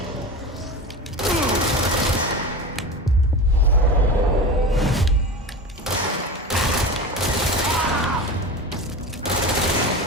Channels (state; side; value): normal; both; correlation 0.28